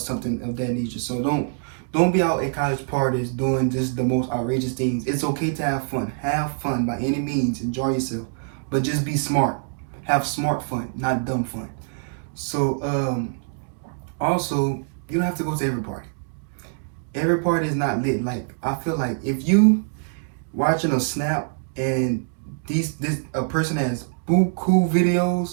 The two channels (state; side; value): silent; left; digital silence